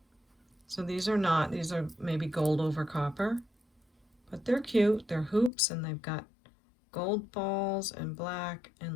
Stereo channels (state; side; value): drops out; right; at 5.5 s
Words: So these are not, these are maybe gold over copper, but they're cute. They're hoops and they've got gold balls and black and